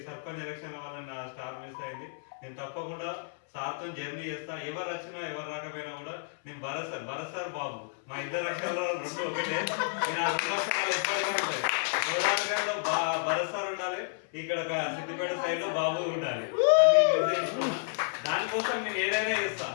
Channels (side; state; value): right; silent; 57 dB below the other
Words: సర్పంచ్ ఎలక్షన్ల వల్ల నా స్టార్ మిస్ అయింది. నేను తప్పకుండా సార్తో జర్నీ చేస్తా. ఎవరు వచ్చినా ఎవరు రాకపోయినా కూడా నేను భరత్ సార్ బాబు, మా ఇద్దరు అక్షరాలు రెండు ఒకటే. నేను ఆ రెండు అక్షరాలు ఎప్పటికీ ఉంటాయి. గోదావరిలో భరత్ సార్ ఉండాలి, ఇక్కడ సిద్దిపేట సైడ్ లో బాబు ఉండాలి అని నిర్ణయించుకున్నా. దానికోసం నేను ఏదైనా చేస్తా,